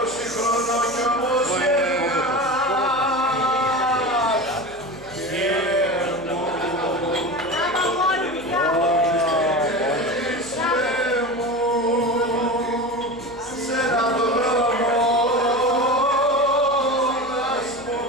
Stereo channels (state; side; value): noise; right; hum, 23 dB below the sound